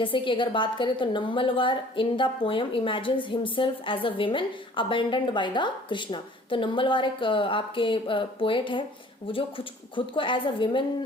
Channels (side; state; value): both; normal; correlation 0.52